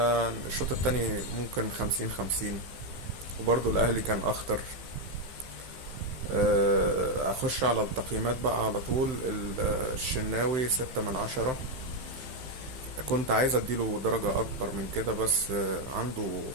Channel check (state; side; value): late; left; 16 ms